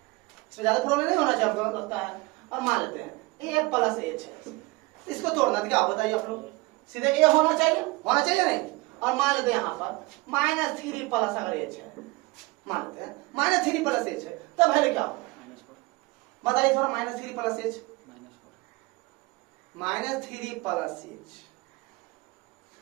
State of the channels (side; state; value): left; quieter; 23.7 dB